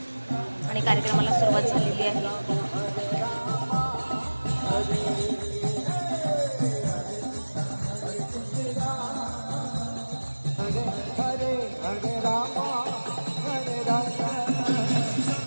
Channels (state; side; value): inverted; both; correlation -1.00